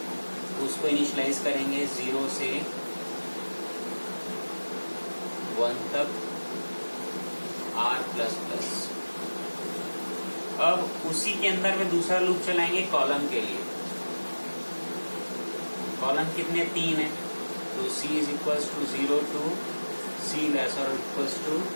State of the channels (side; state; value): both; inverted; correlation -1.00